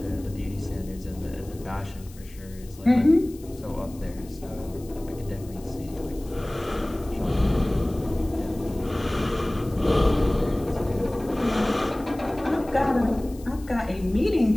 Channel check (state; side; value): noise; left; hiss, 23 dB below the sound